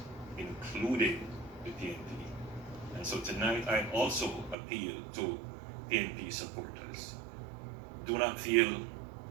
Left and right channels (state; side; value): drops out; left; at 4.5 s